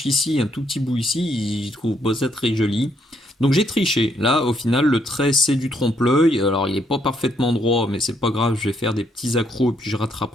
ici, un tout petit bout ici. Je trouve ça très joli. Donc j'ai triché. Là, au final, le trait, c'est du trompe-l'œil. Alors, il n'est pas parfaitement droit, mais c'est pas grave. Je vais faire des petits accros et puis je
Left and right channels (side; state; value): both; normal; correlation 0.73